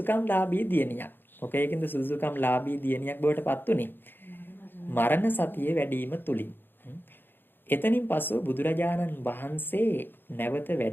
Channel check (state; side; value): late; right; 0.098 ms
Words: ලාභී දියණියක්. මොකේකින්ද සුදුසුකම් ලාභී දියණියක් බවට පත් උනේ? මරණ සතිය වැඩිම තුලින්. එතනින් පසු බුදුරජාණන් වහන්සේ නැවත